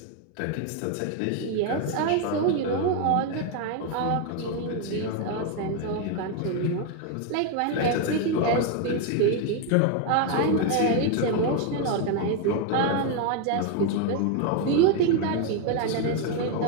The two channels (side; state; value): both; different; correlation 0.01